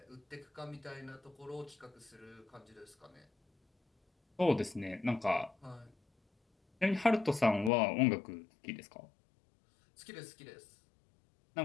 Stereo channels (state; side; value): drops out; right; at 7.7 s